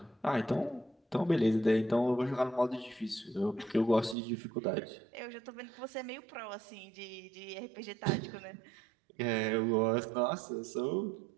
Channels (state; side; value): drops out; left; at 4.2 s